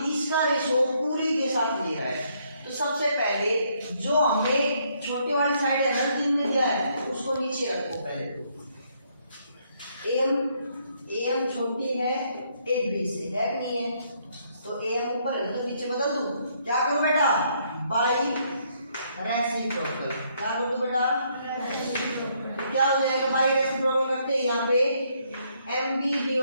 इसका रेशो पूरी के साथ ले रहा है, तो सबसे पहले जो हमने छोटी वाली साइड है ना जिनमें दिया है उसको नीचे रखो पहले। एम छोटी है एक बी से, है कि नहीं है? तो एम ऊपर है तो नीचे बदल दूं। क्या करूं बेटा? By reciprocal. क्या करूं बेटा? क्या हो जाएगा? बाई रेसिप्रोकल करते हैं यहाँ पे एम बी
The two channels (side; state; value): both; inverted; correlation -0.71